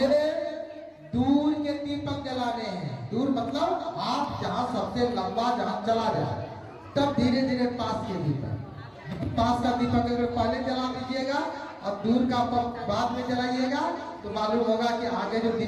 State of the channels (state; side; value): identical; both; correlation 1.00